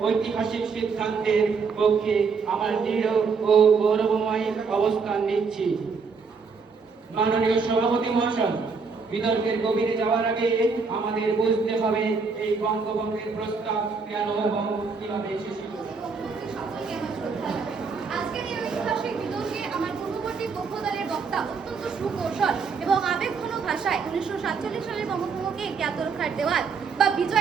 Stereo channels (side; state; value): left; quieter; 5.1 dB